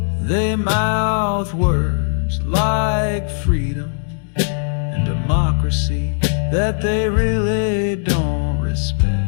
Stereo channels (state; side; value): silent; right; 67 dB below the other